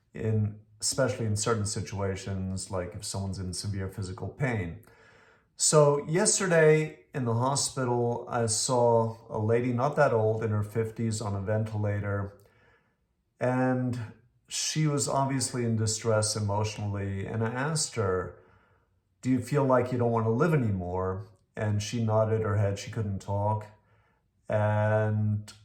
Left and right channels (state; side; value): identical; both; correlation 1.00